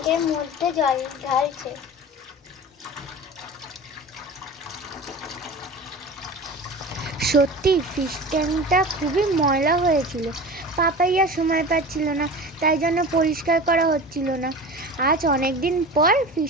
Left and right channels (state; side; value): normal; both; correlation 0.34